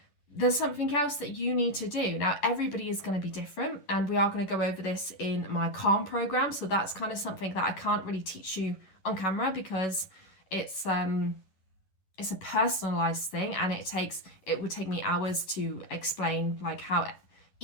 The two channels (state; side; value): late; right; 11 ms